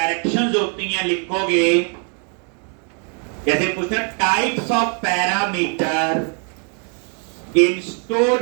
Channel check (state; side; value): quieter; left; 39.8 dB